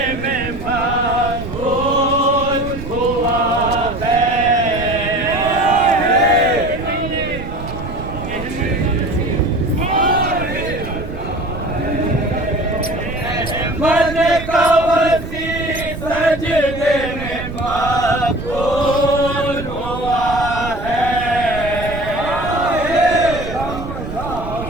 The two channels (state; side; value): noise; right; rumble, 9 dB below the sound